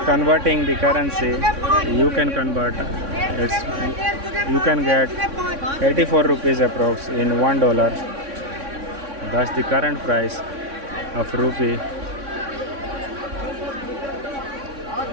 converting the currency. You can convert. You can get 84 rupees approx in $1. That's the current price of rupee.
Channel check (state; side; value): late; left; 3.6 ms